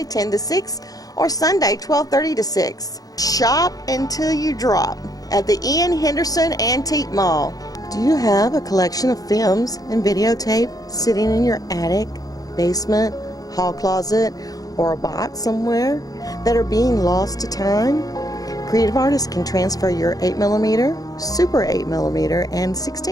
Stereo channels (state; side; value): late; right; 0.18 ms